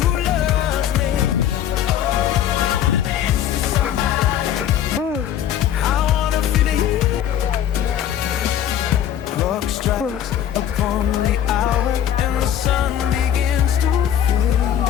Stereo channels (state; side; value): quieter; right; 10.3 dB